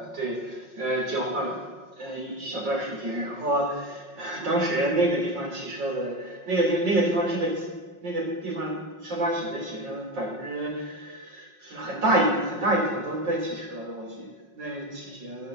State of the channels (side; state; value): left; late; 5.5 ms